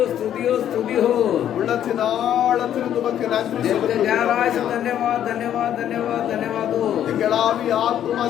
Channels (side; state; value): right; quieter; 10.5 dB